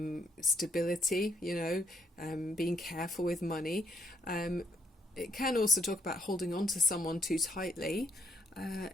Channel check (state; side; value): normal; both; correlation 0.72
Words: stability, being careful with money. It can also talk about holding on to someone too tightly.